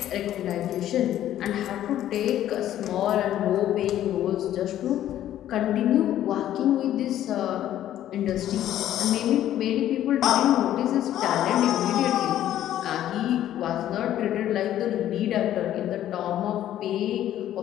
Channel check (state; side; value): quieter; right; 12.1 dB